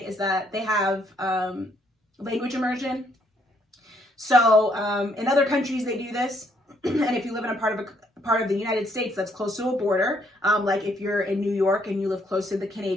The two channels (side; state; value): both; normal; correlation 0.70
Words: is that they have language immersion. So in other countries they do this, and if you live in a part of the United States that's close to a border, like if you're in New York and you live close to the